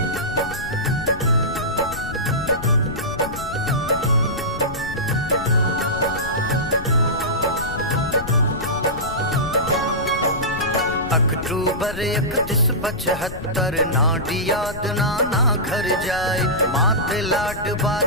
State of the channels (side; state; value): left; noise; rumble, 11 dB below the sound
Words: अक्टूबर 3175 नाडी याद नाना घर जाए। मात लाडबा